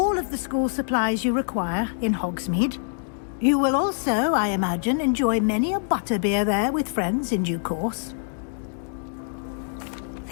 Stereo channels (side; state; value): right; silent; digital silence